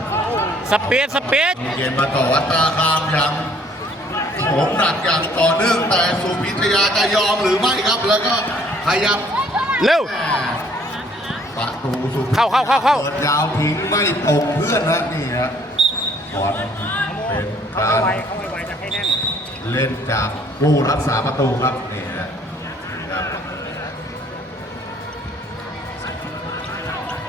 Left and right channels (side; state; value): both; normal; correlation 0.60